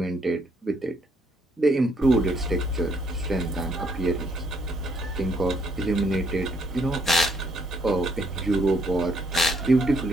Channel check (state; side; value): normal; both; correlation 0.70